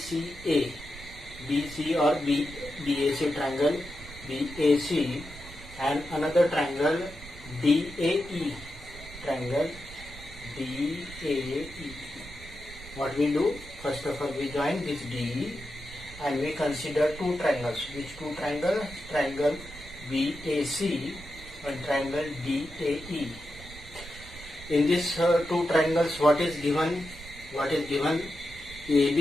BC or BAC, triangle BAC, and another triangle DAE, triangle DAE. What we do? First of all, we join this DE and we consider two triangles. Which two triangles? Triangle BAC and triangle DAE. In these two triangles, what is given?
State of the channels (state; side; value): noise; right; rumble, 16 dB below the sound